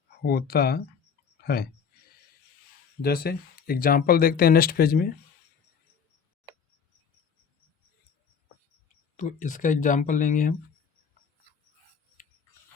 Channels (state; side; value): quieter; right; 6.5 dB